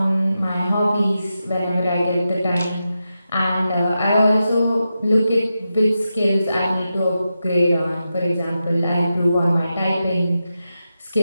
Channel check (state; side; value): inverted; both; correlation -0.89